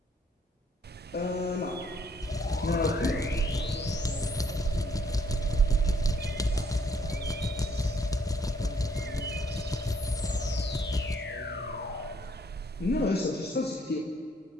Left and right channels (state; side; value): normal; both; correlation 0.68